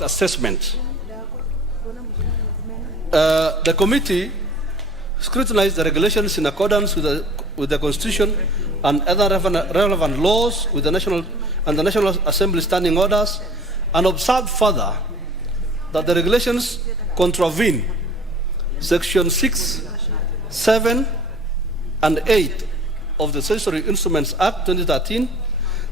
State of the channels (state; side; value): normal; both; correlation 0.46